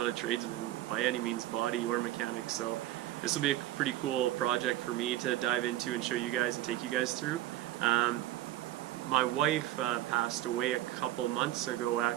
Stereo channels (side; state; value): left; quieter; 14.6 dB